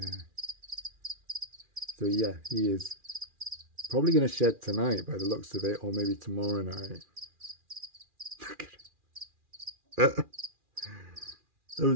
So yeah, he is probably going to shed tonight by the looks of it, or maybe tomorrow night. Look at it. Those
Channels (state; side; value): late; left; 2.4 ms